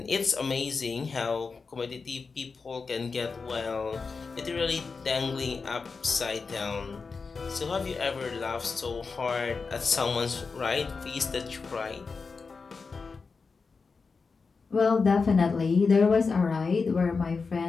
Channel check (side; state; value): right; quieter; 4.7 dB